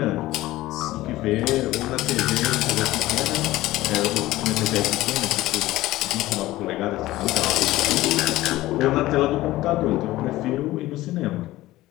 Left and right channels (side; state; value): right; quieter; 16.9 dB